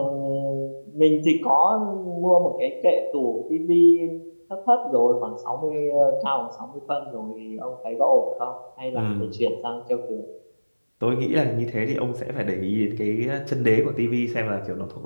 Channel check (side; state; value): both; inverted; correlation -1.00